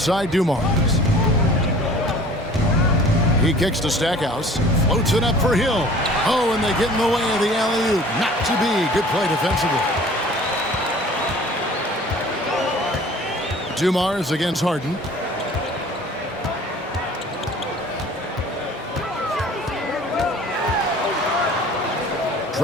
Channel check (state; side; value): normal; both; correlation 0.48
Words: Dumars. He kicks to Stackhouse. Floats it up for Hill. Oh, and they get in the way of the alley-oop. Not to be. Good play defensively. Dumars against Harden.